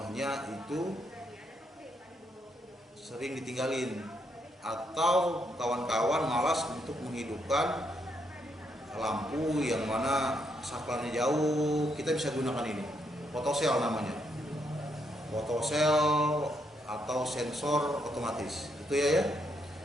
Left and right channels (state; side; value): normal; both; correlation 0.77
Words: itu sering ditinggalin, atau kawan-kawan malas untuk menghidupkan lampu yang mana saklarnya jauh. Kita bisa gunakan ini, photocell namanya, photocell atau sensor otomatis. Itu ya.